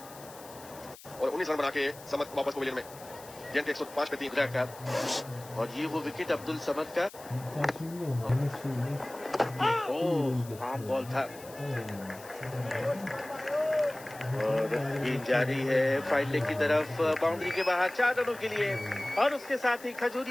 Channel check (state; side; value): noise; left; hiss, 19 dB below the sound